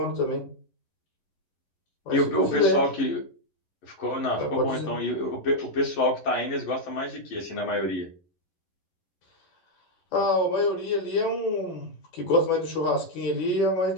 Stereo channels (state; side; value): late; right; 11 ms